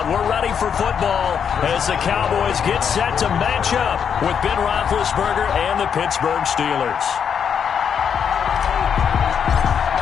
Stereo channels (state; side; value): quieter; right; 7.5 dB